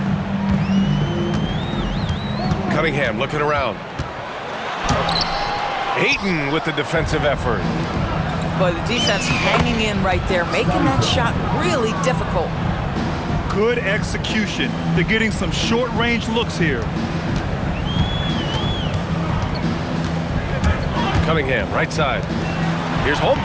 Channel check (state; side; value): identical; both; correlation 1.00